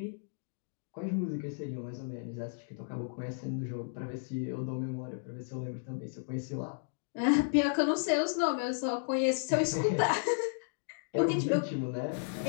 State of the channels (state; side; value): silent; right; digital silence